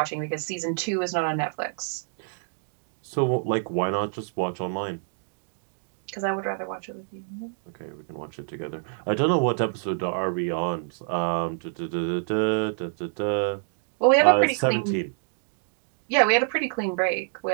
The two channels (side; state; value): left; silent; digital silence